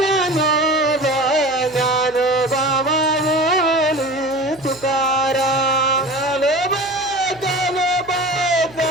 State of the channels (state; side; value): noise; right; hum, 24 dB below the sound